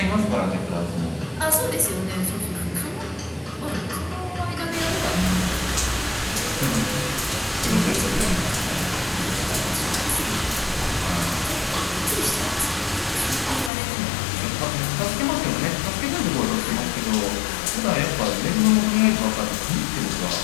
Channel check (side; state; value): right; drops out; at 13.7 s